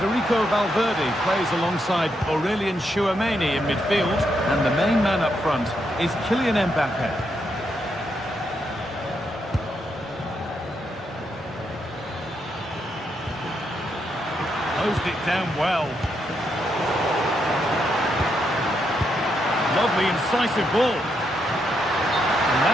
Valverde plays alongside Aurelien Tchouameni in midfield. And the main man up front is Kylian Mbappe. Closed it down well. Lovely incisive ball. And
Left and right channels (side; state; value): both; normal; correlation 0.80